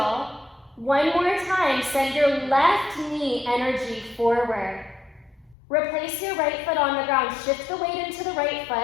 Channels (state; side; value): drops out; right; at 5.6 s